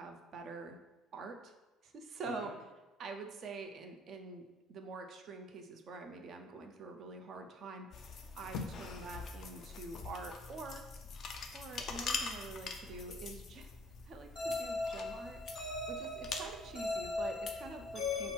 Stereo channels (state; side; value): normal; both; correlation 0.58